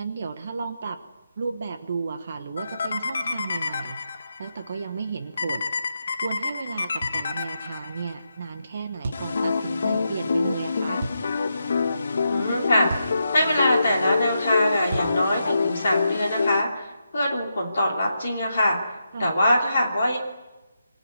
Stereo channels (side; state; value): both; inverted; correlation -0.85